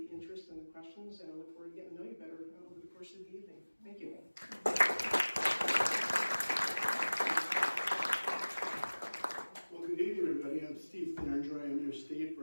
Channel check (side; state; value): both; inverted; correlation -1.00